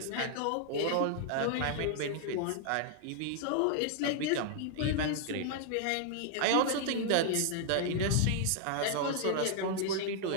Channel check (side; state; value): both; different; correlation 0.00